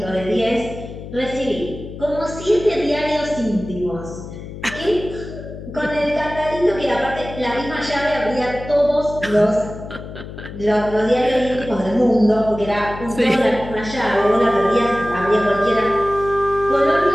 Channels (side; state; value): left; noise; hum, 12 dB below the sound